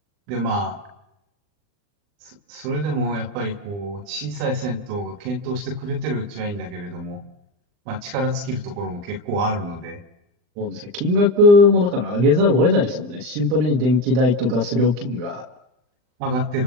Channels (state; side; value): late; left; 40 ms